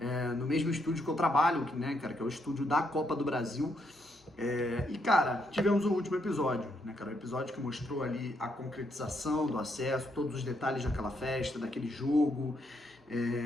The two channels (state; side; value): normal; both; correlation 0.76